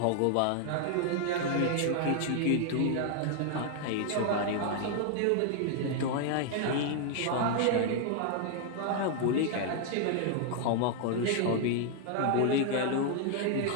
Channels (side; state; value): both; different; correlation 0.00